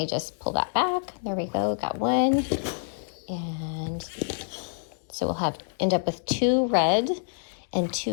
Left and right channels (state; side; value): silent; right; digital silence